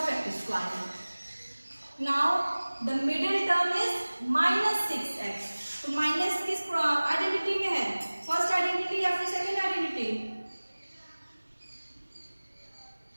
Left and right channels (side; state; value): both; inverted; correlation -1.00